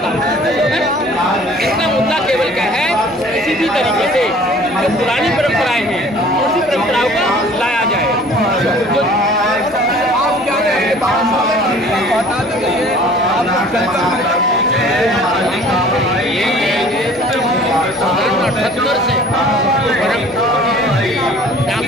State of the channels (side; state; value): both; normal; correlation 0.50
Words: इसका मुद्दा केवल क्या है, किसी भी तरीके से जो पुरानी परंपराएं हैं उसी परंपराओं का लाया जाए। आप क्या कहेंगे बता दीजिए, आप अठहत्तर से